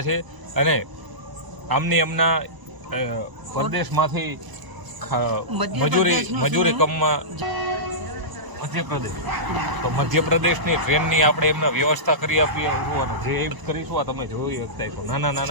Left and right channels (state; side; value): late; left; 1.0 ms